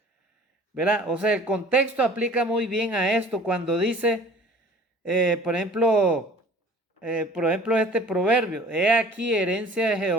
¿verdad? O sea, el contexto aplica muy bien a esto cuando dice, por ejemplo, este proverbio: he aquí, herencia de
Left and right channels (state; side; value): normal; both; correlation 0.48